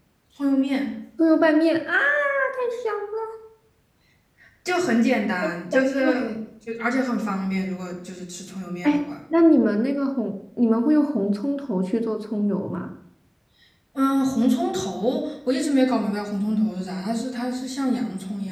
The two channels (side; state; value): both; identical; correlation 1.00